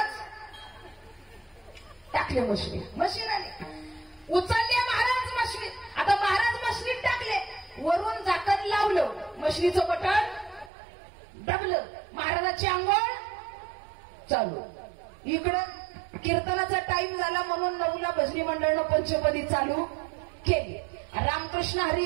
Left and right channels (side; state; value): left; drops out; at 10.7 s